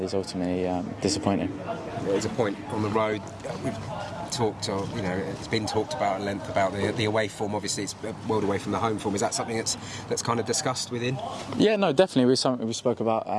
is ultimately disappointing. There's a point on the road. We've talked, it's been talked about at length about the away form. Obviously, it's a world away from the home form. Is that something that's kind of discussed within? Yeah, no, definitely. It was something we spoke about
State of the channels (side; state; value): both; identical; correlation 1.00